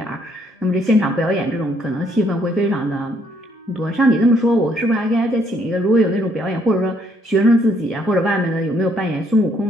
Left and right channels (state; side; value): normal; both; correlation 0.69